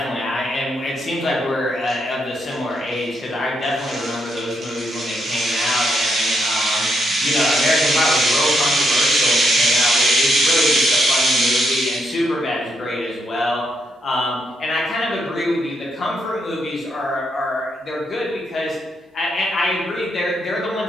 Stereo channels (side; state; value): both; normal; correlation 0.78